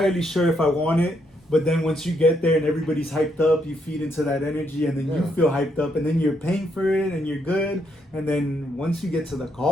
sure if I want it. But then once you get there and everybody's hyped up, you feed into that energy, and then you feel hyped up, and then you're paying for it and you're good. And then once you get to the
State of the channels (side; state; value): both; normal; correlation 0.76